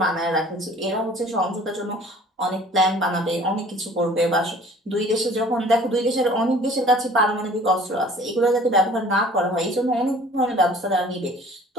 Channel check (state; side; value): normal; both; correlation 0.50